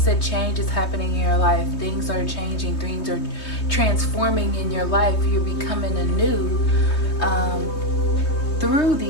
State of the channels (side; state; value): right; late; 3.2 ms